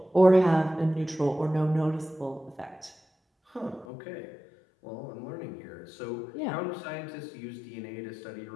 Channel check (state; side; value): drops out; right; at 3.9 s